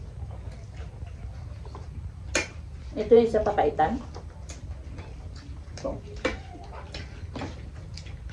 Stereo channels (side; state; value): both; identical; correlation 1.00